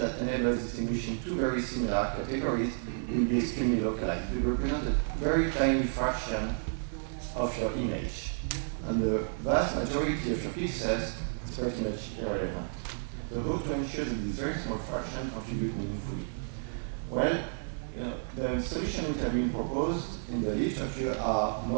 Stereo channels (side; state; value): left; silent; digital silence